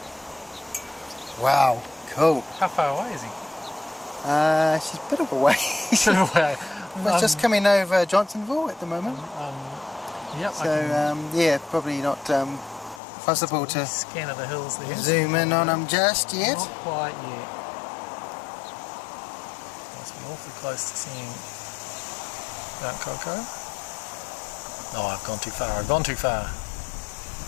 Wow, cool. How far away is he? She's a bit of a way. But just coming over Johnsonville at the moment. Yep. So yeah, probably not possible to Scan of the hills there. zoom in on them just yet. Not quite yet. Must be awfully close to seeing Mount Coco. Oh, I've gone too far. I've gone too far.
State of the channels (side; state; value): right; drops out; at 13.0 s